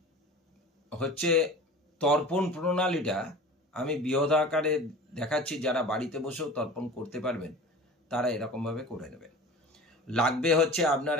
হচ্ছে তর্পণ প্রণালীটা আমি বৃহৎ আকারে দেখাচ্ছি, যারা বাড়িতে বসেও তর্পণ করতে পারবেন তারা এরকমভাবে করে নেবেন। লাগবে হচ্ছে আপনার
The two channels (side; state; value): both; normal; correlation 0.38